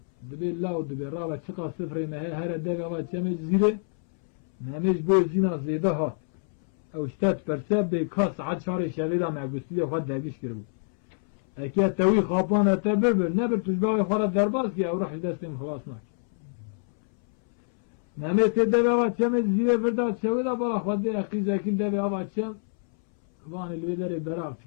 دبی لاو دبی رابا چقا سفره مهی هر دوی آوان چمی زیره ممیش بوی زینا زیدا هات او شتات پرسه بی کاس عد شار شویدا مگوستی خود دبیش کرو اکی توی خوابان اتا ببر نبر تجباوی خورد درباز که او روح دستیم خلاص ناک ممی تی دوی آوان چمی زیره فرداد شویدا بالا خود قیزا کل دوی آوان چم وان الویدر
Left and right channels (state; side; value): silent; right; 61 dB below the other